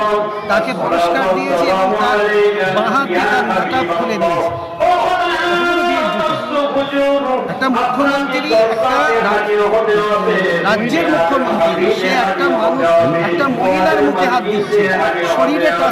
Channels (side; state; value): both; identical; correlation 1.00